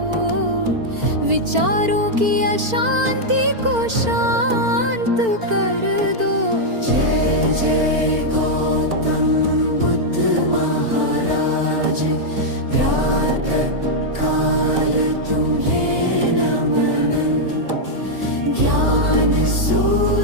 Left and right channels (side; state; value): left; late; 4.4 ms